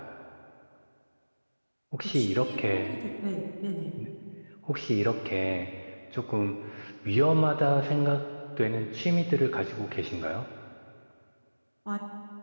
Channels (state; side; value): inverted; both; correlation -1.00